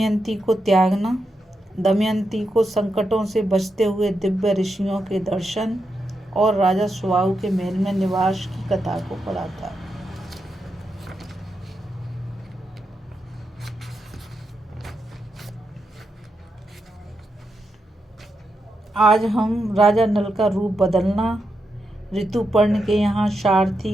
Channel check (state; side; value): normal; both; correlation 0.85